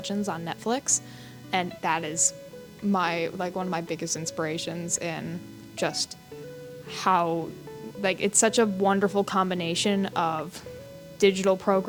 on Netflix, and that is one of my biggest inspirations in just how it's such a wonderful combination of digital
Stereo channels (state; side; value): identical; both; correlation 1.00